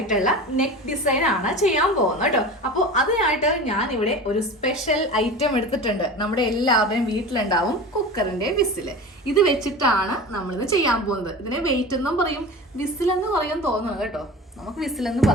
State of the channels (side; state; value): both; normal; correlation 0.33